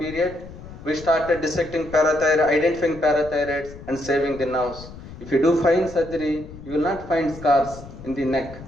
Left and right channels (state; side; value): noise; left; rumble, 15 dB below the sound